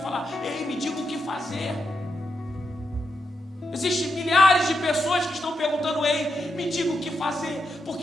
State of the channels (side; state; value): both; normal; correlation 0.84